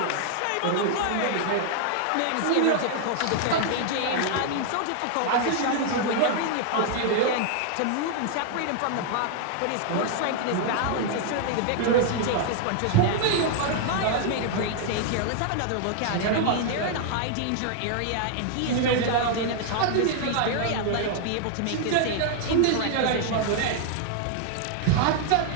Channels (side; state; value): both; different; correlation 0.00